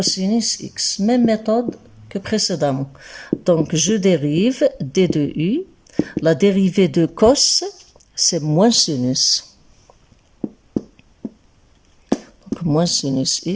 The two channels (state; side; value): identical; both; correlation 1.00